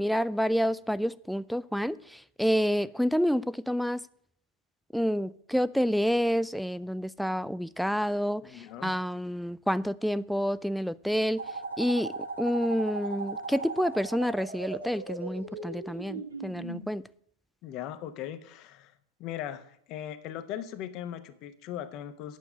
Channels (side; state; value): both; normal; correlation 0.90